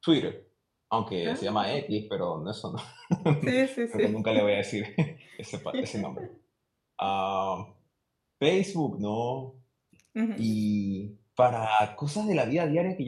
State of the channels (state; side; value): identical; both; correlation 1.00